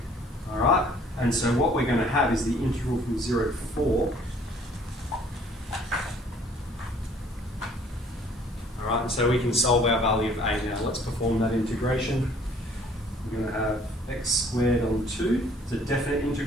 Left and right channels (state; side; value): normal; both; correlation 0.57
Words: Alright? And so what we're going to have is the integral from 0 to 4. Alright, and so we can solve our value of A now. Let's perform that integration. We're going to have x squared on 2. It's a definite